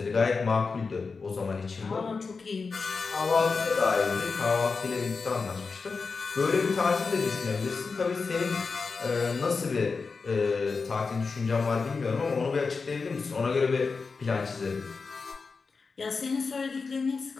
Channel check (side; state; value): right; quieter; 4.6 dB